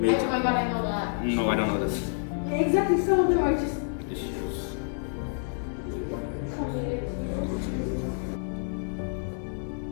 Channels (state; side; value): silent; right; digital silence